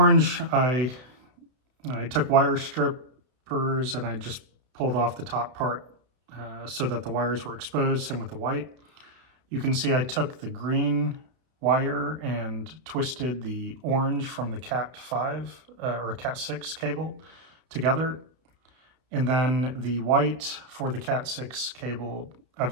I took wire strippers and I just pulled off the top part so that the wires were exposed. Same with the white. You can see I took the green wire and twisted the orange from the Cat 5 or Cat 6 cable together. And then the white for the Cat 6 cable,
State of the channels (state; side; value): late; left; 32 ms